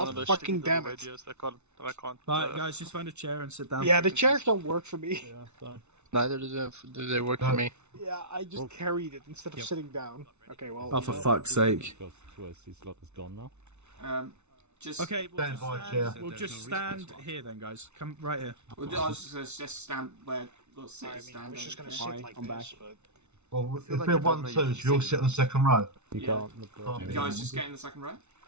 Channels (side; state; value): left; late; 0.82 ms